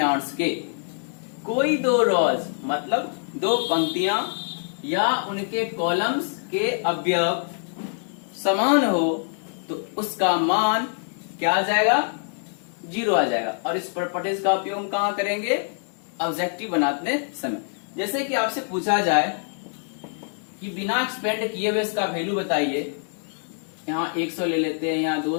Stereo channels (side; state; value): right; silent; digital silence